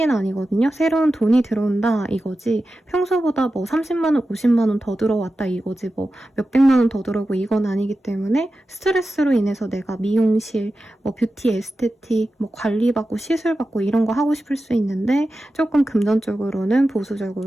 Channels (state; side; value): normal; both; correlation 0.93